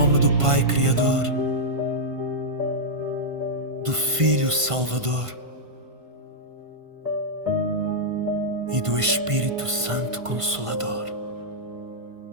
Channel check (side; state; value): left; late; 1.5 ms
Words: do Pai Criador, do Filho Salvador e do Espírito Santo Consolador.